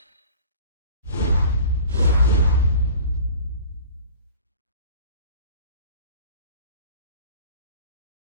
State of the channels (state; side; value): inverted; both; correlation -0.43